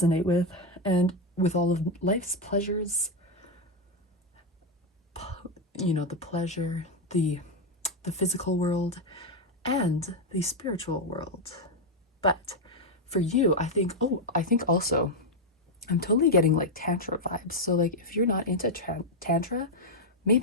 with. And with all of life's pleasures, you know, the pleasure, the physical world, and the spiritual world. But for you, I think also, I'm totally getting like Tantra vibes. So like if you're not into Tantra,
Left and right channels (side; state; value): both; normal; correlation 0.04